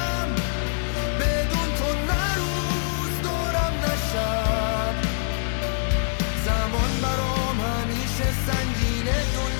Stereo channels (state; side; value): silent; right; digital silence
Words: بدون تو نه روز دارم نه شب. زمان برام همیشه سنگینه،